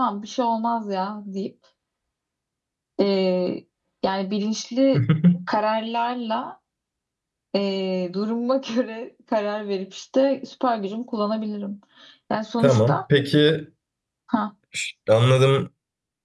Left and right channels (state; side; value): identical; both; correlation 1.00